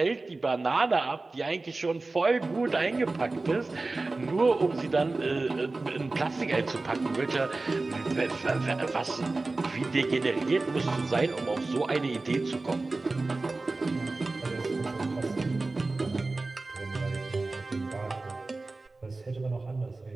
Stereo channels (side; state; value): left; quieter; 3.4 dB